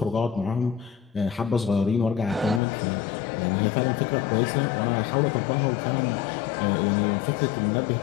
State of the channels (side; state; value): right; drops out; at 2.6 s